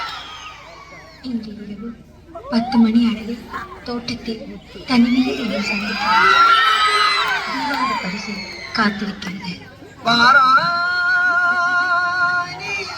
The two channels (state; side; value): identical; both; correlation 1.00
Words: இன்று இரவு 10 மணி அளவில் தோட்டத்தில் தனிமையில் என்னை சந்தித்தார். தீபாவளி பரிசு காத்திருக்கிறது. வாராய் நீ,